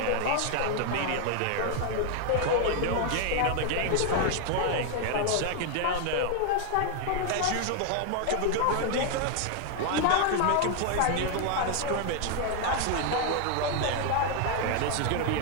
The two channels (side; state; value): both; different; correlation 0.00